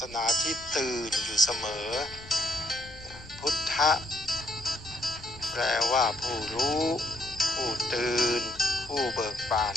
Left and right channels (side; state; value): left; noise; rumble, 19 dB below the sound